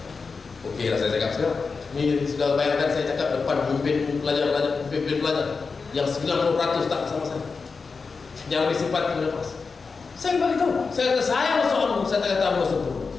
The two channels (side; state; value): right; quieter; 4.7 dB